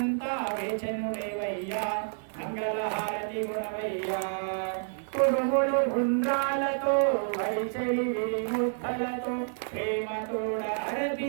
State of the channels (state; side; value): silent; left; digital silence